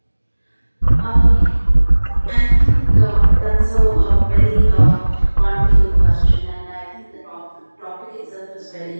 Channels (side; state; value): both; inverted; correlation -1.00